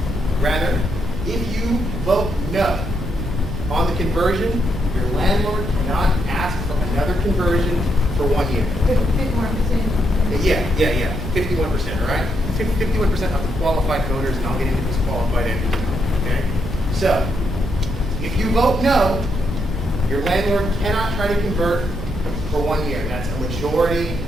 if you vote no on the conversion, your landlord cannot ask for another conversion for 1 year. 51%. Yeah. 51%, all right? 51% of the qualified voters, and I'll get into disqualified entities. Okay? So, if you vote no, your landlord cannot try to convert for 1 year. That's a majority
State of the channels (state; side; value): noise; right; rumble, 7 dB below the sound